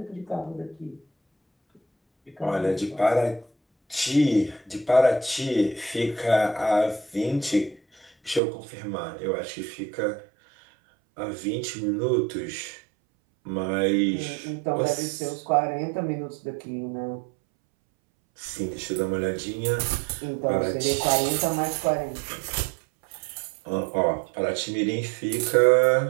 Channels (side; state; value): left; drops out; at 8.4 s